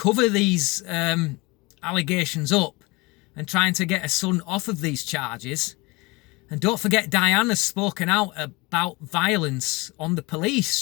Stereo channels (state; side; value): quieter; right; 24.7 dB